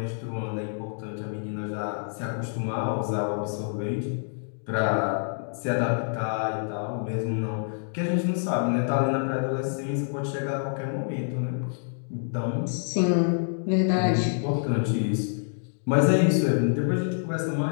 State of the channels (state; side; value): silent; right; digital silence